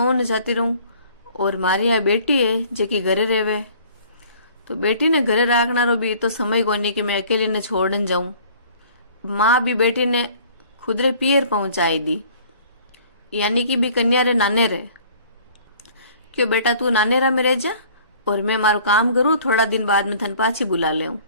जाती रहूं और मारी यहाँ बेटी है जेकी घरे रेवे। तो बेटी ने घरे राखना रो भी तो समय कोनी कि मैं अकेली ने छोड़न जाऊं। माँ भी बेटी ने खुदरे पियर पहुंचाई दी, यानी कि भी कन्या रे नाने रे। क्यों बेटा तू नाने रा में रह जा और मैं मारो काम करूं, थोड़ा दिन बाद में थन पाछी बुला ले।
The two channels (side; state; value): both; inverted; correlation -0.52